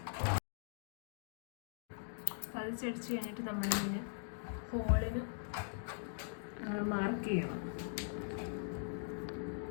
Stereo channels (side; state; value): right; silent; digital silence